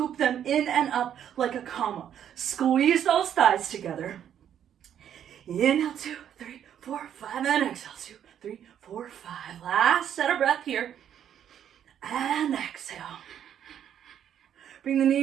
them in and up like a comma. Squeeze those thighs together. Inhale, 2, 3, 4, 5, and exhale, 2, 3, 4, 5. Last set of breath here. And exhale. Bring the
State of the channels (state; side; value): quieter; left; 9.6 dB